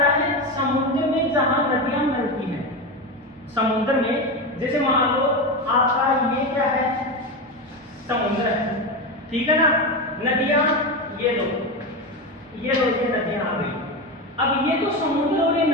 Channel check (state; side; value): normal; both; correlation 0.18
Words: है, समुद्र में जहां नदियां मिलती हैं, समुद्र में जैसे मान लो आपका ये क्या है, समुद्र है, ठीक है ना, नदियां ये लो, ये नदियां आ गई। अब ये तो समुद्र और ये